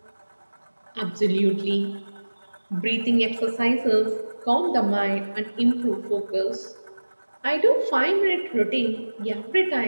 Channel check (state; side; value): inverted; both; correlation -1.00